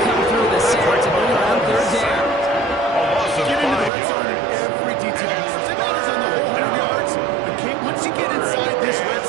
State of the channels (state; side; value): drops out; left; at 3.9 s